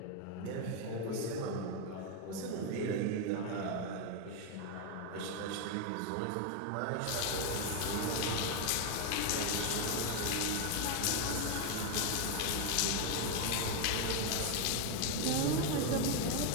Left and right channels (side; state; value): both; different; correlation 0.01